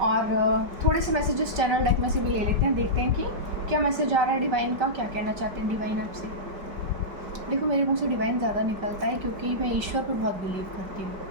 और थोड़े से मैसेजेस चैनल डेक में से भी ले लेते हैं, देखते हैं कि क्या मैसेज आ रहा है डिवाइन का, क्या कहना चाहते हैं डिवाइन आपसे। देखो मेरे मुंह से डिवाइन ज़्यादा निकलता है क्योंकि मैं ईश्वर पर बहुत बिलीव करती हूँ,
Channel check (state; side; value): late; left; 5.1 ms